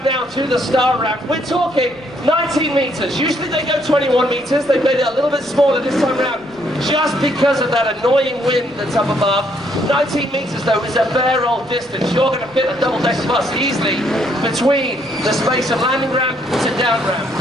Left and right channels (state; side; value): noise; left; rumble, 29 dB below the sound